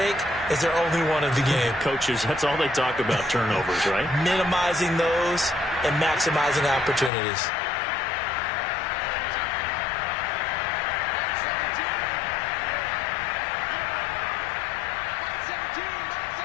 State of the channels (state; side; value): drops out; right; at 7.1 s